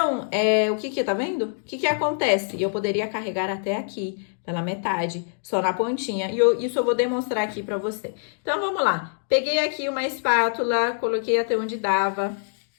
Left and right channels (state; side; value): silent; right; digital silence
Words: o que tá vendo? O que acontece? Eu poderia carregar até aqui, pela metade, só na pontinha. E isso eu vou demonstrar aqui pra você. Então, vamos lá. Peguei aqui uma espátula, coloquei até onde dava.